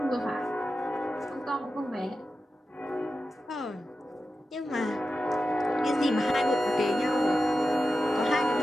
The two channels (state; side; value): normal; both; correlation 0.91